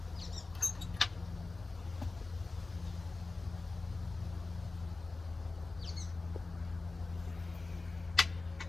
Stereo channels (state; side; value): quieter; right; 3.6 dB